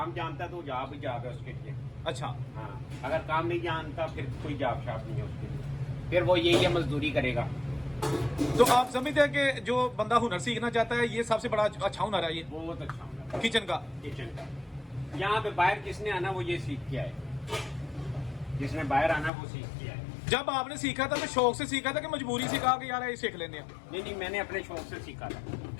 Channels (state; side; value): drops out; right; at 19.3 s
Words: जानता है तो जॉब ही जॉब है उसके लिए। अच्छा हाँ, अगर काम नहीं जानता फिर कोई जॉब शॉप नहीं है उसके लिए, फिर वो यही है मजदूरी करेगा। तो आप समझते हैं कि जो बंदा हुनर सीखना चाहता है, ये सबसे बड़ा अच्छा हुनर है ये बहुत अच्छा हुनर किचन का। यहाँ पे बाहर किसने आना वो ये सीख के आए, जिसने बाहर आना वो सीख के आए। जब आपने सीखा था तो शौक से सीखा था कि मजबूरी से कहा कि यार ये सीख लेने हैं? नहीं, मैंने अपने शौक से सीखा था